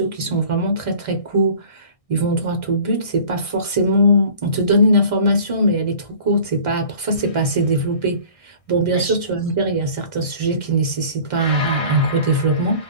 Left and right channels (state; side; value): late; right; 1.6 ms